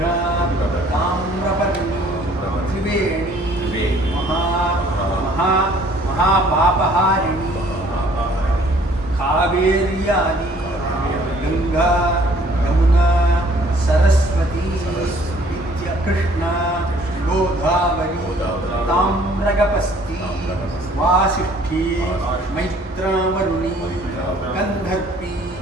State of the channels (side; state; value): both; normal; correlation 0.58